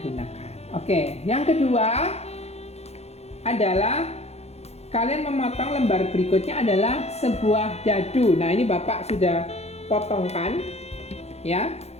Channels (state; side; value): late; right; 0.31 ms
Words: gunakan. Oke, yang kedua adalah kalian memotong lembar berikutnya adalah sebuah dadu. Nah, ini Bapak sudah potongkan ya.